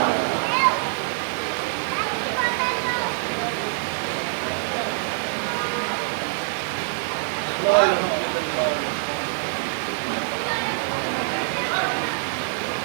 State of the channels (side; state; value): left; silent; digital silence